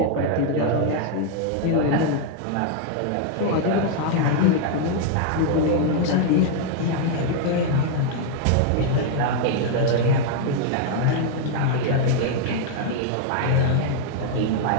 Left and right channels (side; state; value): both; different; correlation 0.00